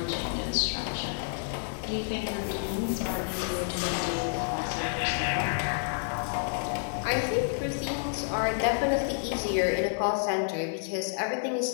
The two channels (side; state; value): right; silent; digital silence